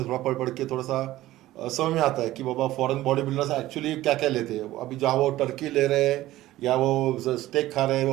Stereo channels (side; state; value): left; quieter; 15.7 dB